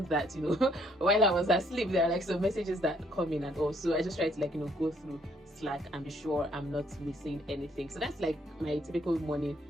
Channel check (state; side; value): normal; both; correlation 0.67